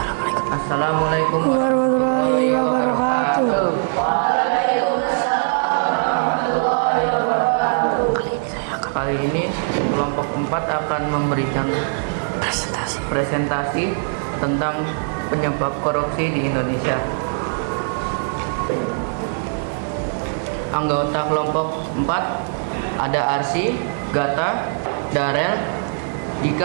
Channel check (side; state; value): left; silent; digital silence